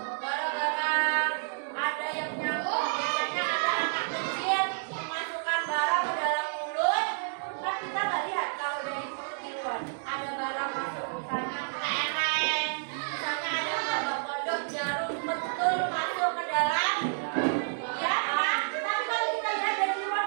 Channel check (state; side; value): silent; left; digital silence